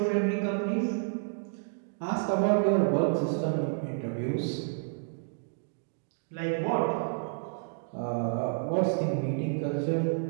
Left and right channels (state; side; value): silent; left; digital silence